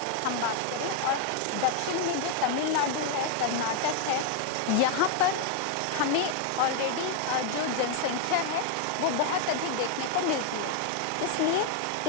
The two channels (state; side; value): different; both; correlation 0.00